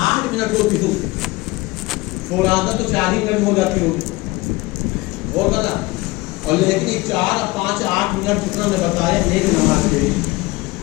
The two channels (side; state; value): right; quieter; 21.9 dB